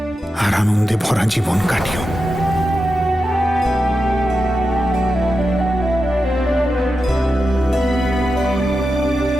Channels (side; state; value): both; normal; correlation 0.90